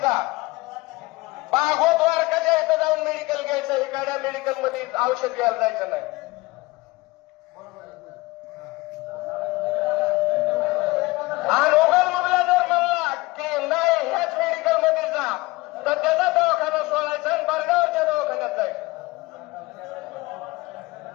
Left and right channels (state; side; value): quieter; right; 21.7 dB